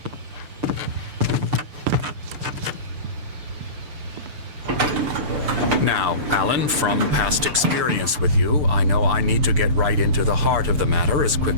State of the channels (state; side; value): late; left; 6.8 ms